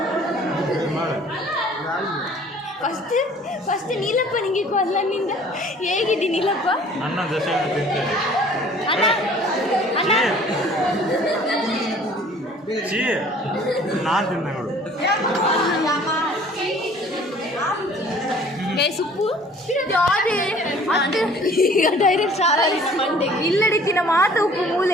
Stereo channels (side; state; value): both; normal; correlation 0.52